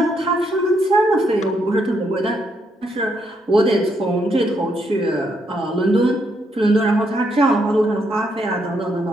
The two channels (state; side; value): normal; both; correlation 0.76